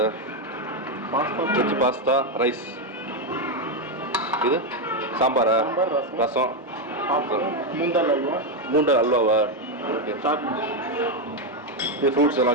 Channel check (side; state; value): both; normal; correlation 0.05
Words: veg pasta rice. இது சாம்பாரா? ரசம். மூண்டல் அல்வாவா? ஓகே. இது ஃப்ரூட்ஸ் எல்லாம்